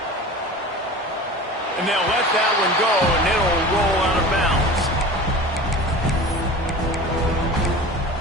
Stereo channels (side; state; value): both; normal; correlation 0.36